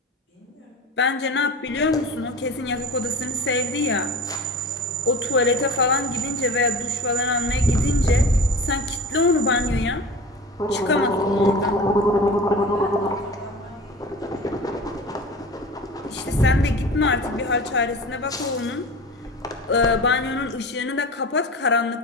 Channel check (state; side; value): normal; both; correlation 0.35